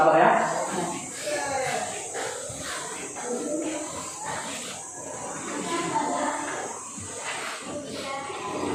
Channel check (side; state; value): both; identical; correlation 1.00